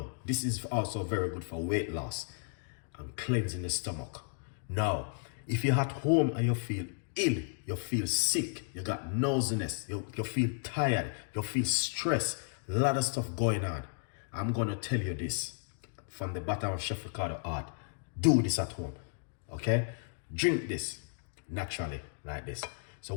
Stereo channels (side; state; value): right; silent; digital silence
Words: this is also very good for weight loss and cleansing the stomach. Now, if you're at home and you feel ill, you feel sick, you got nauseousness, you feel tired, you feel stressed, a lot of stuff going on, I'm going to tell you this from the bottom of Chef Ricardo heart. Do this at home, okay? Drink this naturally like this. So